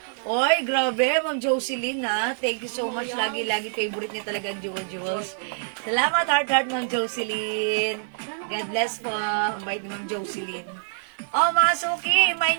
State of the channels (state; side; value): silent; left; digital silence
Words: Oy, grabe, Ma'am Jocelyn ha. Thank you so much. Lagi favorite niya talaga ang jewels. Salamat, heart, Ma'am Jocelyn. God bless po. Ang bait ni Ma'am Jocelyn. Oh, mga suki, may